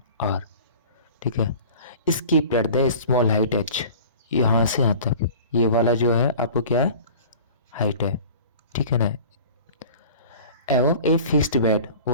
आर, ठीक है। इसकी at the small height H, यहाँ से यहाँ तक ये वाला जो है आपको क्या है, हाइट है, ठीक है ना। एवं a fixed bed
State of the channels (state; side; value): inverted; both; correlation -0.42